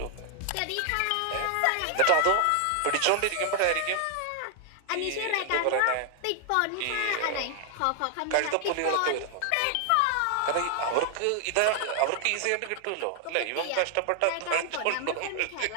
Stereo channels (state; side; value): different; both; correlation 0.00